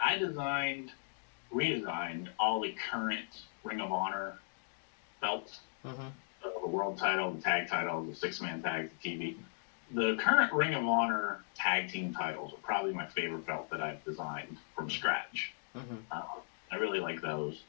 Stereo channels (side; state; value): right; silent; digital silence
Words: redesigned all the current Ring of Honor belts. So the world title, the tag title, the six-man tag, the TV. The current Ring of Honor tag team titles are probably my favorite belt that I've designed from scratch. I really like those.